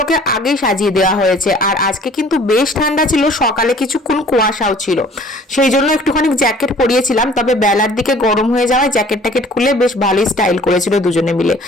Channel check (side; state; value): both; normal; correlation 0.52